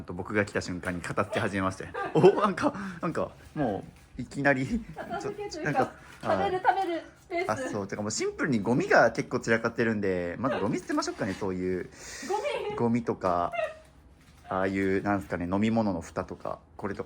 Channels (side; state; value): both; identical; correlation 1.00